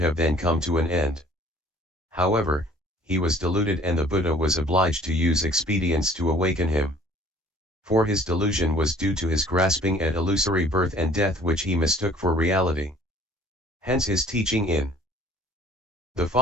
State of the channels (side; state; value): both; normal; correlation 0.53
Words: then come to an end. However, he was deluded and the Buddha was obliged to use expedients to awaken him. For his delusion was due to his grasping at illusory birth and death which he mistook for reality. Hence his teaching in the